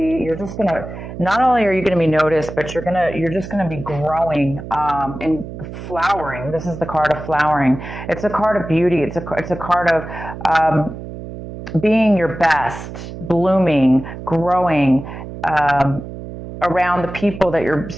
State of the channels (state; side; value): noise; right; hum, 11 dB below the sound